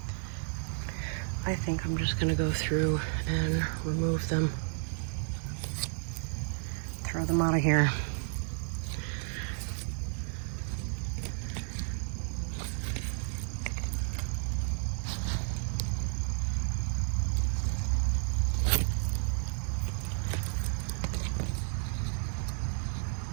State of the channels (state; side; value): silent; left; digital silence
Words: I think I'm just gonna go through and remove them. Throw them out of here.